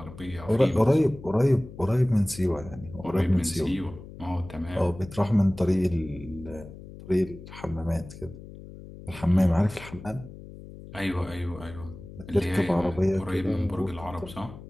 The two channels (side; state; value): left; noise; hum, 15 dB below the sound